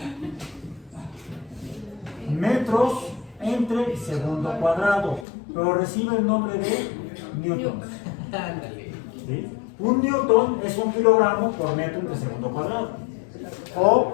metros, entre segundo cuadrado, pero recibe el nombre de newtons. ¿Sí? Un newton es un kilogramo por metro entre segundo cuadrado. O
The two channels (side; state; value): right; drops out; at 5.2 s